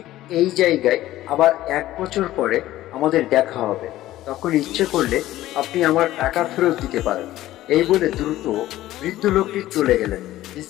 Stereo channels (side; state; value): right; quieter; 15.0 dB